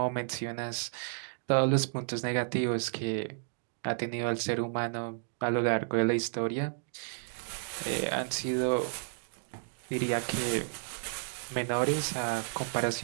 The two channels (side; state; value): left; silent; digital silence